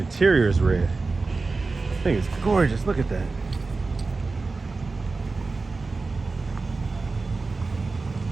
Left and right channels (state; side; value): quieter; left; 3.8 dB